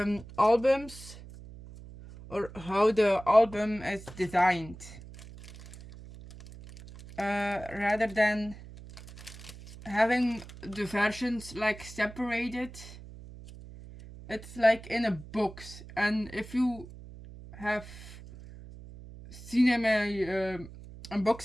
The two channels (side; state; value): right; noise; hum, 16 dB below the sound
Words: albums, or how the album is designed. Rather than having the versions like separated, it's like in a box. And if you have seen my